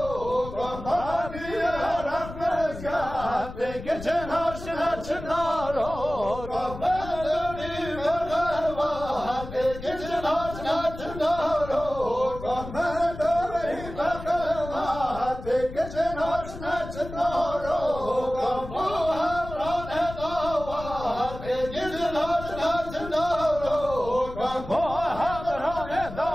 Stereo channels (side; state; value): left; noise; rumble, 12 dB below the sound